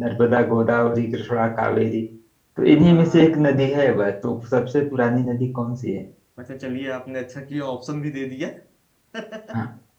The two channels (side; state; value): both; identical; correlation 1.00